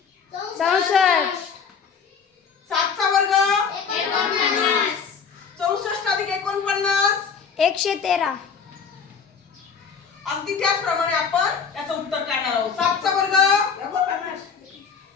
64. 7 चा वर्ग? 49. 64 अधिक 49 113. अगदी त्याचप्रमाणे आपण याचं उत्तर काढणार आहोत. 7 चा वर्ग?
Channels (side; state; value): right; quieter; 6.2 dB